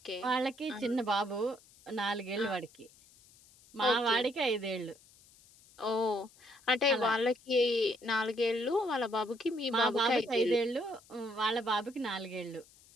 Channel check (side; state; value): left; noise; hiss, 26 dB below the sound